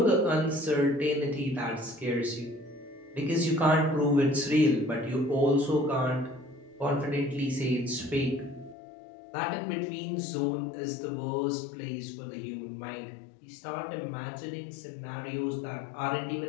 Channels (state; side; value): drops out; right; at 8.8 s